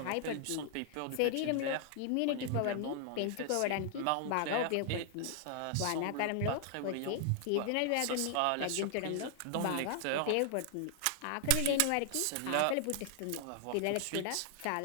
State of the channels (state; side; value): different; both; correlation 0.00